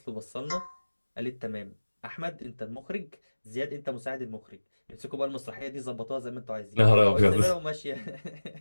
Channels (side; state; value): both; inverted; correlation -1.00